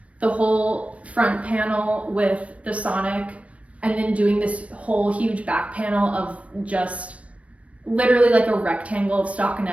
the whole front panel with the Sonic and then doing this whole huge back panel of just literally like a rectangle of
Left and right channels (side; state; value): left; late; 0.064 ms